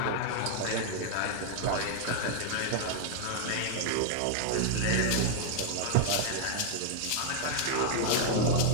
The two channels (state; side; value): different; both; correlation 0.00